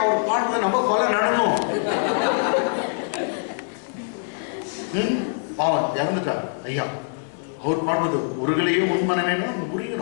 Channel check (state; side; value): silent; right; 63 dB below the other